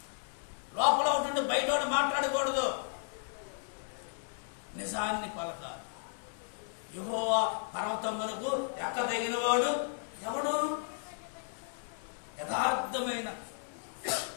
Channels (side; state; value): right; silent; 55 dB below the other